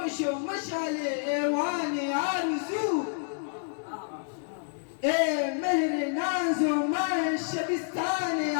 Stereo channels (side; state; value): right; silent; digital silence